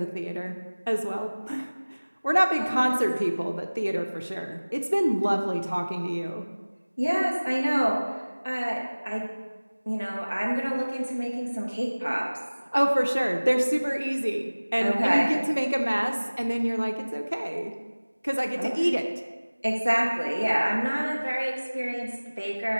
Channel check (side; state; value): both; inverted; correlation -1.00